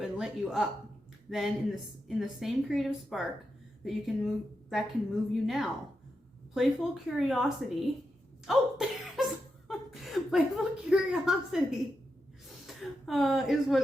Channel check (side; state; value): both; normal; correlation 0.87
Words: and lit you up then in the same creative spark that can move you now? Playful curiosity. Oh, there's playful curiosity